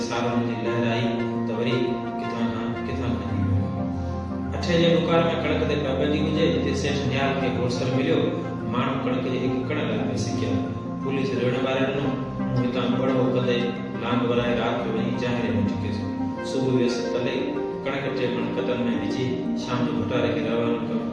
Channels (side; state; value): both; identical; correlation 1.00